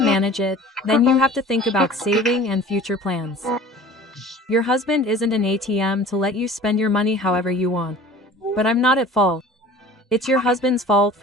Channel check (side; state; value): both; normal; correlation 0.44